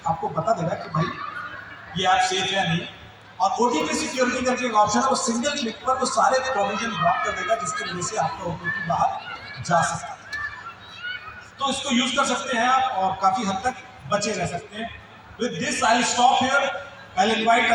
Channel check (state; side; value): identical; both; correlation 1.00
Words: आपको बता देगा कि भाई ये ऐप सेफ है या नहीं। और OTP सिक्योरिटी करके एक ऑप्शन है, वो सिंगल क्लिक पर वो सारे प्रोविजन ब्लॉक कर देगा, जिसकी वजह से आपका OTP बाहर जा सकता है। तो इसको यूज कर सकते हैं आप और काफी हद तक बचे रह सकते हैं। With this I will stop here. I will invite